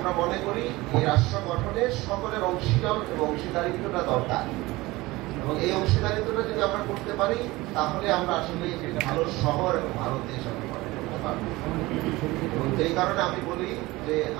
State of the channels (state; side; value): quieter; left; 20.3 dB